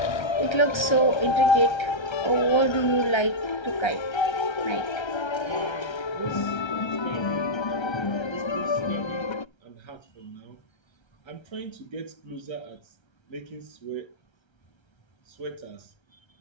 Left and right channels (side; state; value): right; late; 1.3 ms